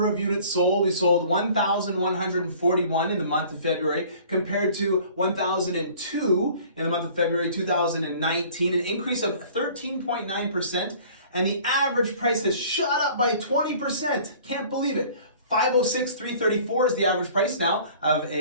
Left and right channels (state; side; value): inverted; both; correlation -0.50